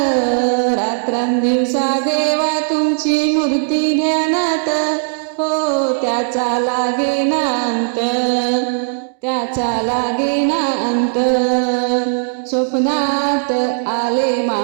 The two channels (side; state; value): left; silent; digital silence